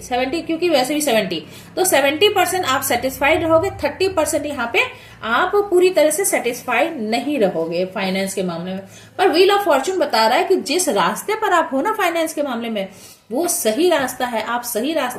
70 क्योंकि वैसे भी 70, तो 70% आप सेटिस्फाइड रहोगे, 30% यहाँ पे आप पूरी तरह से सेटिस्फाइड नहीं रहोगे फाइनेंस के मामले में। पर व्हील ऑफ फॉर्च्यून बता रहा है कि जिस रास्ते पर आप हो ना फाइनेंस के मामले में, वो सही रास्ता है, आप सही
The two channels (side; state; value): both; identical; correlation 1.00